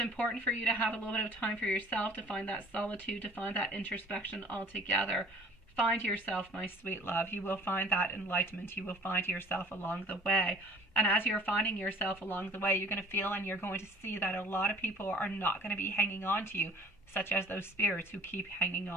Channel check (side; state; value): both; normal; correlation 0.49